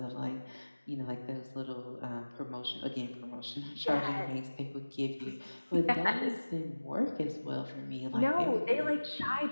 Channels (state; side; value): inverted; both; correlation -1.00